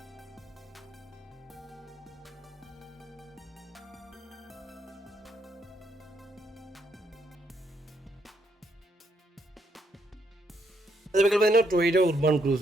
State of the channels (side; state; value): both; normal; correlation 0.75